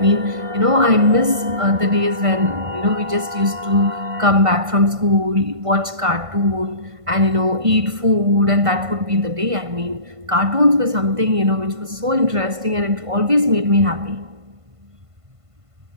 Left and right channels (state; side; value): late; left; 1.5 ms